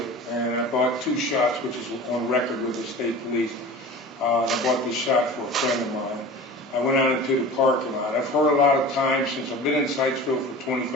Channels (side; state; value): both; normal; correlation 0.36